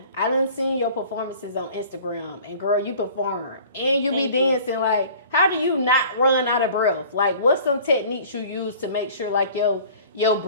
I done seen your performances on Instagram, and girl, you perform and you be dancing. Like, how do you not run out of breath? Like, what's some techniques you use to make sure like your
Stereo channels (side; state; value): both; inverted; correlation -0.47